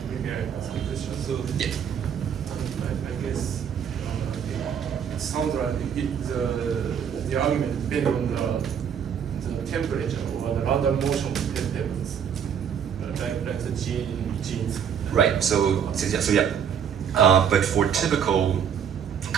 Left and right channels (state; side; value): quieter; left; 8.0 dB